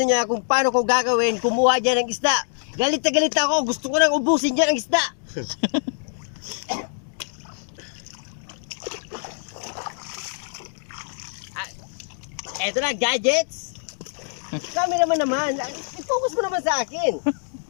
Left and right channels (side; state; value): right; silent; 62 dB below the other